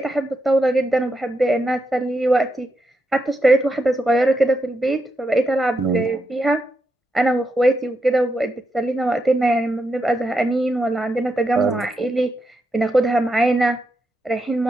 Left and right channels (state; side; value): normal; both; correlation 0.84